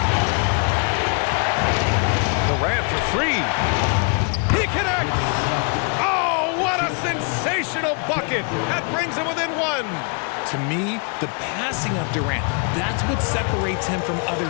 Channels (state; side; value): quieter; right; 37.0 dB